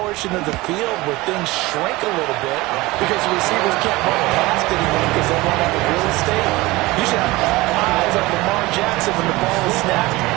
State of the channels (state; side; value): quieter; left; 20.6 dB